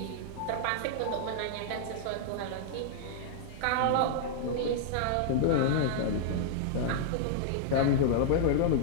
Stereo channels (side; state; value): both; different; correlation -0.01